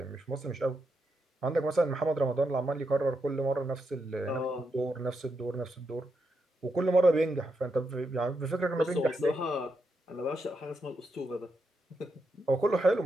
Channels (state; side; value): normal; both; correlation 0.83